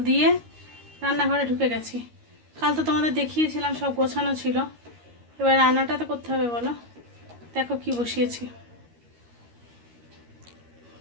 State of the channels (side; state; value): left; late; 13 ms